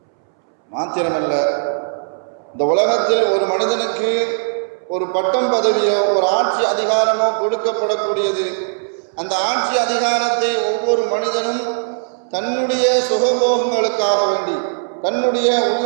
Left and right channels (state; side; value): silent; left; 67 dB below the other